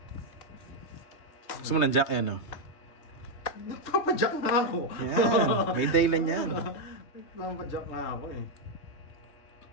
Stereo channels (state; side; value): late; right; 3.2 ms